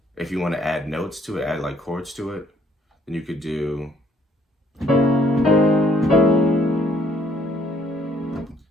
If you want to add notes to it, add like chords to it, then you could do,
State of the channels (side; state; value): both; normal; correlation 0.64